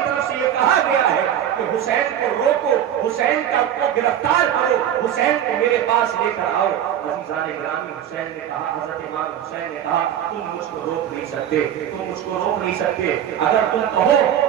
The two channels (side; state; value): left; quieter; 10.3 dB